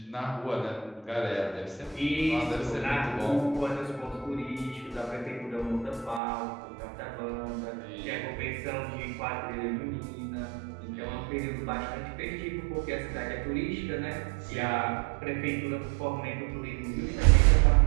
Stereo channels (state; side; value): drops out; left; at 6.2 s